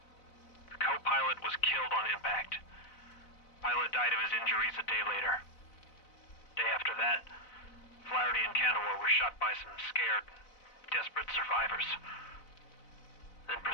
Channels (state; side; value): late; right; 4.0 ms